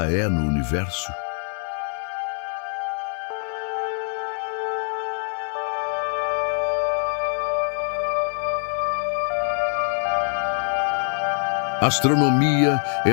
é no universo? A astronomia é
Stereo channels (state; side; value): silent; right; 62 dB below the other